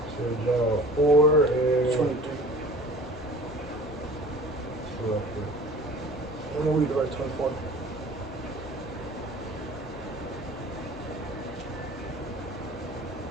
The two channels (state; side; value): normal; both; correlation 0.45